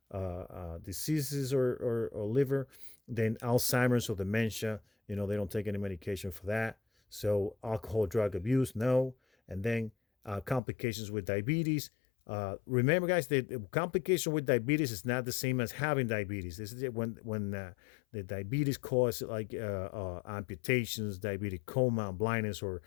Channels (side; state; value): right; drops out; at 10.6 s